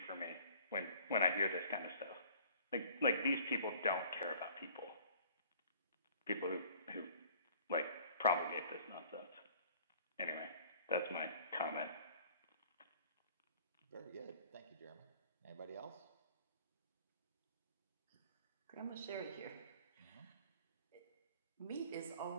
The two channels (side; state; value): both; inverted; correlation -0.53